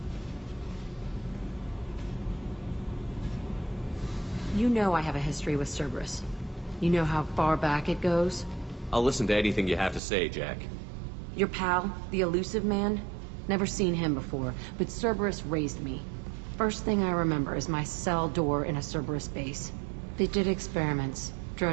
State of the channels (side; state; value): left; drops out; at 10.0 s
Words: You know I have a history with Cerberus. You know how far back it goes? I'll listen to anything you have to say, Jack. Your pal, the Elusive Man? Never seen him before, but Cerberus raised me. First thing I remember is my cell door in a Cerberus base. They did experiments,